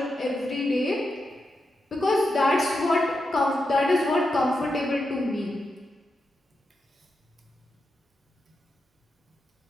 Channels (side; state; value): both; normal; correlation 0.87